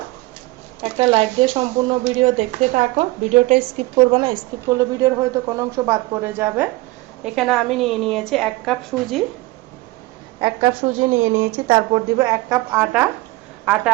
একটা লাইক দিয়ে সম্পূর্ণ ভিডিও দেখতে থাকো। ভিডিওটা স্কিপ করবে না, স্কিপ করলে ভিডিওর হয়তো কোনো অংশ বাদ পড়ে যাবে। এখানে আমি নিয়ে নিয়েছি 1 কাপ সুজি। 1 কাপ সুজি নিয়ে নিয়েছি। তারপর দিব 1 কাপ আটা। আটা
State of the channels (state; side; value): quieter; left; 20.9 dB